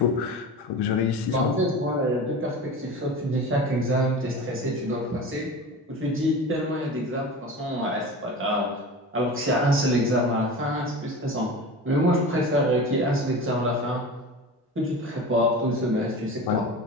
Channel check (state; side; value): normal; both; correlation 0.33